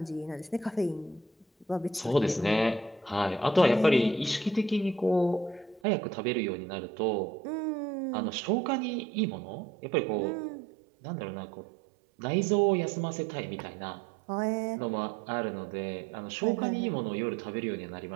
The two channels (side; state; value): left; drops out; at 5.8 s